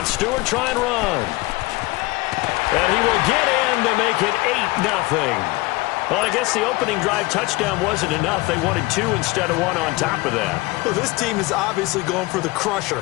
Stewart try and run. And he will get in to make it 8-0. Well, I guess the opening drive touchdown wasn't enough. They wanted 2 instead of 1 on top of that. Well, this team is obviously going for the crusher.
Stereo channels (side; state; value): right; quieter; 21.9 dB